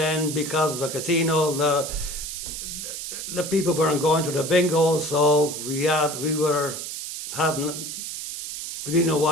because of the casino, the people weren't going to the bingos, so we didn't know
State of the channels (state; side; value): noise; right; hiss, 7 dB below the sound